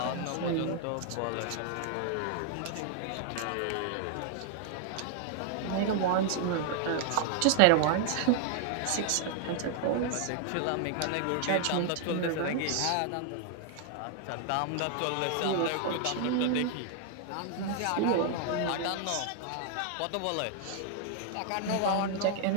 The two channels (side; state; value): both; different; correlation 0.00